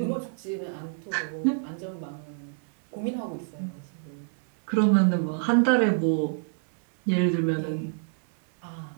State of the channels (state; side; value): silent; left; 58 dB below the other